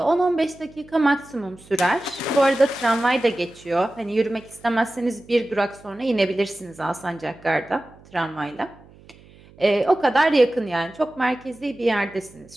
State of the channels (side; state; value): right; noise; hum, 25 dB below the sound